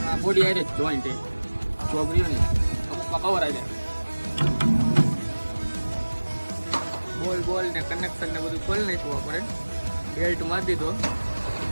બોડી આઈ જોઈન્ટ ચોગરીઓ ને અમુકમાં કવર આવી જાય. બોલ ને કનેક્શન ને બધું ખોલી નાખ્યું આપણે. બેલ્ટ મારી દીધો.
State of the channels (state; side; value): inverted; both; correlation -1.00